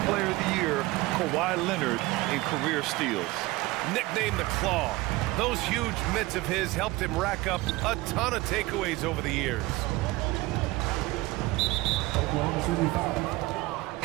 Player of the Year, Kawhi Leonard, in career steals. Nicknamed the Claw. Those huge mitts of his helped him rack up a ton of takeaways over the years.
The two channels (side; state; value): left; quieter; 20.5 dB